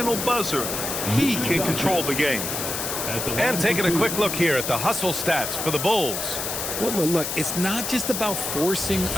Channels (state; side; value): noise; left; hiss, 3 dB below the sound